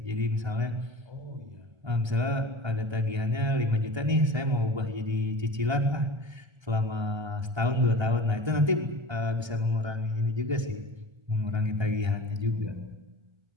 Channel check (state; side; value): late; left; 1.3 ms